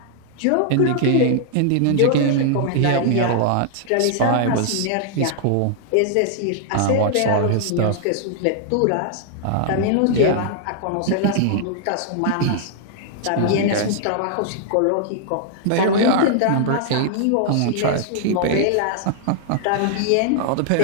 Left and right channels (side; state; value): both; different; correlation -0.01